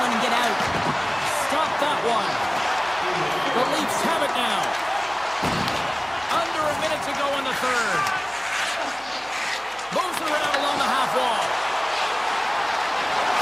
and get out. Stop that one. The Leafs have it now. Under a minute to go in the third. Moves around along the half wall.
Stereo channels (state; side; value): noise; right; hum, 27 dB below the sound